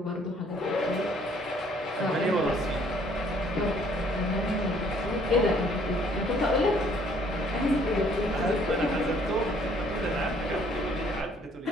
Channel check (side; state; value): both; normal; correlation 0.61